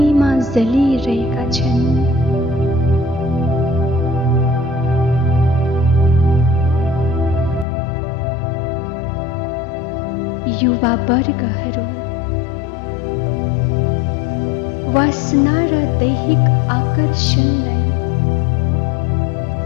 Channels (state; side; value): drops out; right; at 7.7 s